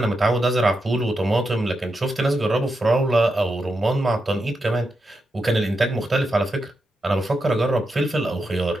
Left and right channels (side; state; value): both; normal; correlation 0.86